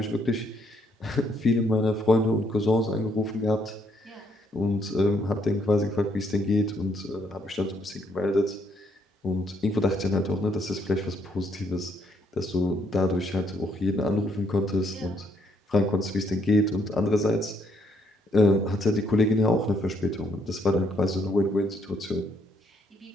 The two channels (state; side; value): normal; both; correlation 0.71